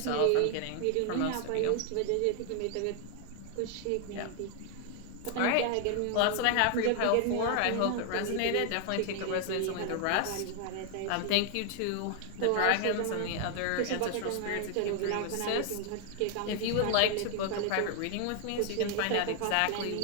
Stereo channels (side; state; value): both; different; correlation 0.00